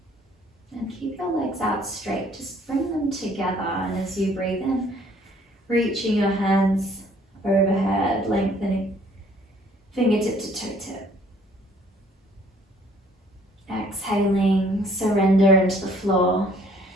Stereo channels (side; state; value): both; normal; correlation 0.59